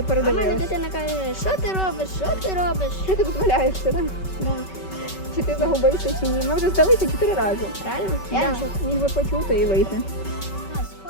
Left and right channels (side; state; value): right; late; 5.3 ms